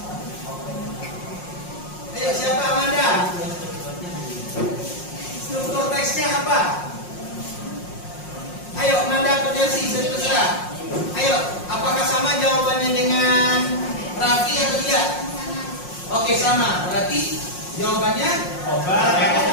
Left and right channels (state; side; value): late; right; 5.6 ms